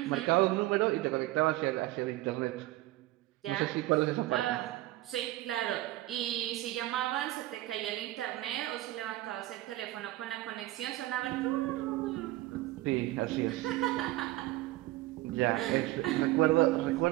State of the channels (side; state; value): left; quieter; 17.3 dB